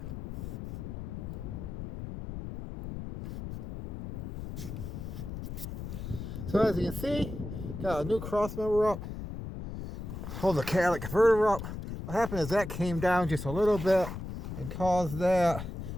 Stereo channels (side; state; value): left; noise; rumble, 8 dB below the sound